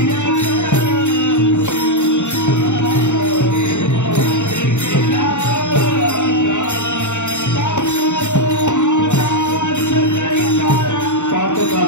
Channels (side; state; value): right; late; 0.84 ms